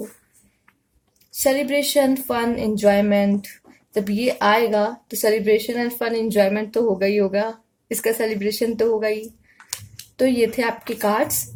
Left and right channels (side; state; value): both; identical; correlation 1.00